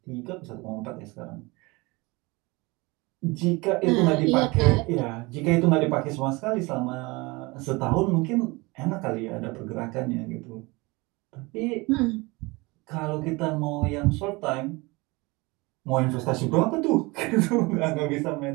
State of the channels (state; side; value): quieter; left; 24.4 dB